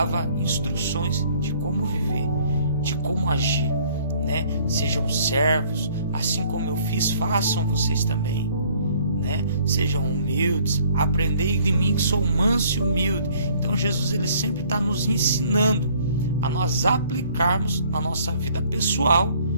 instruções de como viver, de como agir, né? Sejam servos, assim como eu fiz, façam vocês também. Né? Sejam humildes, aprendei de mim que sou manso e humilde. Então Jesus, ele sempre está nos ensinando a nós aplicarmos na nossa vida pessoal,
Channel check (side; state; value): both; inverted; correlation -0.59